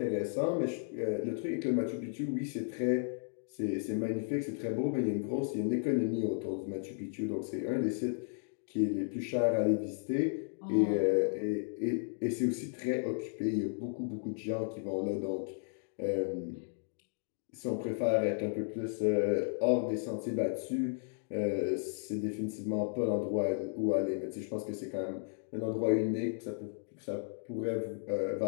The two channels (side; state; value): right; silent; digital silence